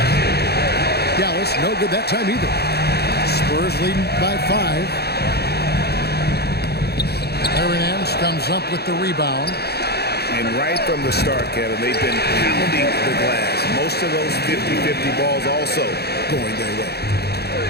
Dallas, no good that time either. Spurs leading by 5. Aaron Nance comes up with the rebound. And right from the start, Kevin, they've been pounding the glass. Most of those 50-50 balls also going their way.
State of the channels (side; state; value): right; late; 0.47 ms